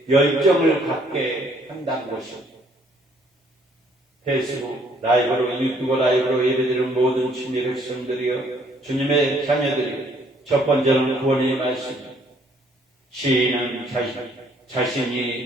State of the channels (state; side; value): normal; both; correlation 0.64